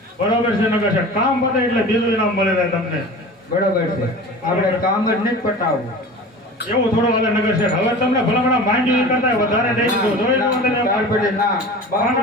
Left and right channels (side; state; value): both; normal; correlation 0.37